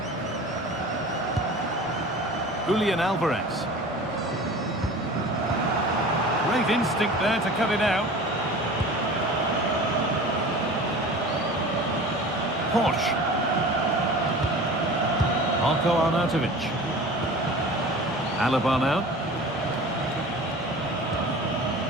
Julian Alvarez. Great instinct there to cut it out. Posh. Marko Arnautovic. Alaba now.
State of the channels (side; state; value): both; normal; correlation 0.39